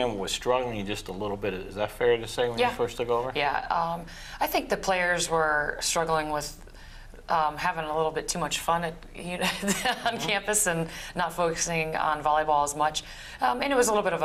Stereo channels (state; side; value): identical; both; correlation 1.00